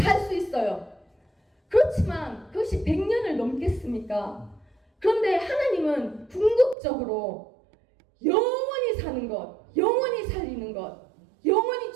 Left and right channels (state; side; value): drops out; left; at 6.8 s